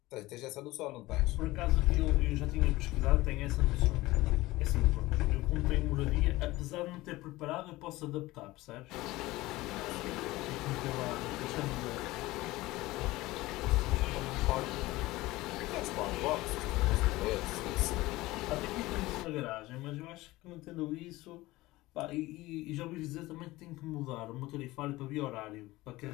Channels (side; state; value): right; quieter; 19.0 dB